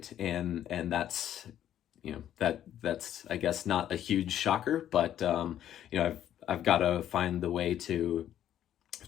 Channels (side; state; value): right; quieter; 11.0 dB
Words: and that's that's I guess not a huge shocker, but I've got to find the way to